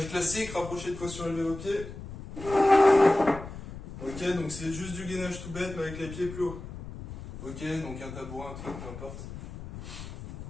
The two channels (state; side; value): noise; left; rumble, 12 dB below the sound